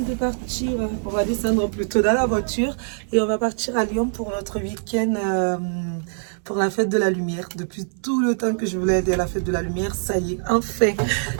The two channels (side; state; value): left; silent; 63 dB below the other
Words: partir. On va descendre plutôt dans la voiture et on va partir à Lyon pour notre week-end pour la fête de la lumière. Depuis tout le temps que je voulais aller à la fête de la lumière, ça y est, enfin,